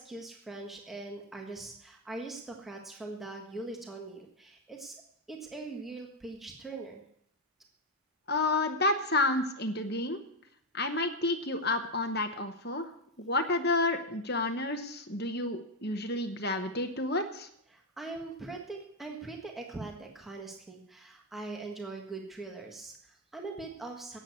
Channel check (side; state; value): both; normal; correlation 0.03